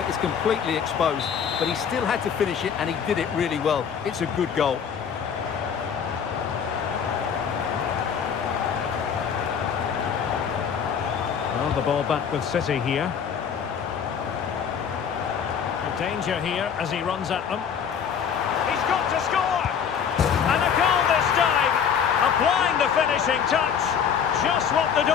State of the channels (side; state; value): right; quieter; 7.5 dB